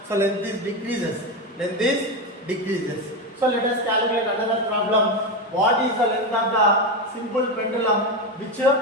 So length is decreases. Length is decreases. So let us calculate another problem. What is the length of the simple pendulum which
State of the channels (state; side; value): normal; both; correlation 0.14